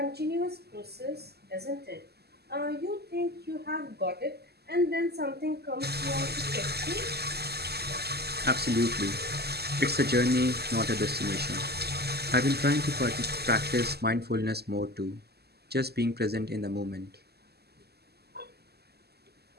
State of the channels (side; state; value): left; late; 0.47 ms